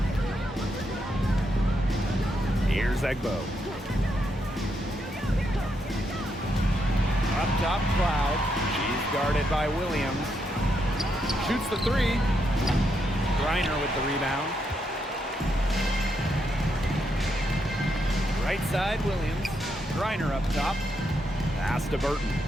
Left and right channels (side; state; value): both; normal; correlation 0.80